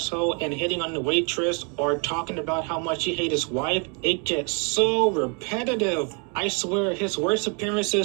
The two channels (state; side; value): quieter; left; 36.5 dB